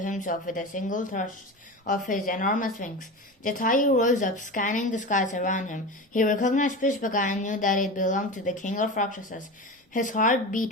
with a single thrust of his enormous wings. Jatayu rose up, scanning the skies around him. He recognized Pushpaka and knew that it belonged to the king of Rakshasas. His heart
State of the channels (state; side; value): normal; both; correlation 0.27